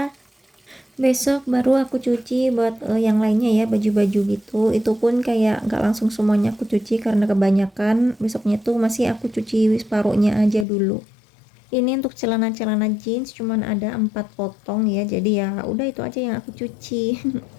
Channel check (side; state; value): right; drops out; at 10.7 s